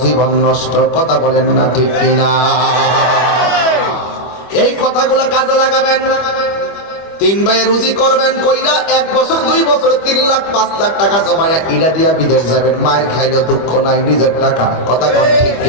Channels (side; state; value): right; late; 25 ms